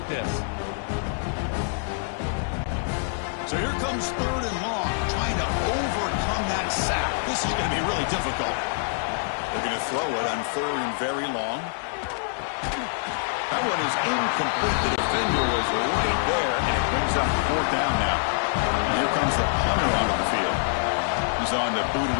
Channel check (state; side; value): silent; right; digital silence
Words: this. So here comes 3rd and long, trying to overcome that sack. This is going to be really difficult. They're going to throw it on 3rd and very long. That one is incomplete. The defender was right there, and it brings up 4th down now. And here comes the punter onto the field. He's on to boot it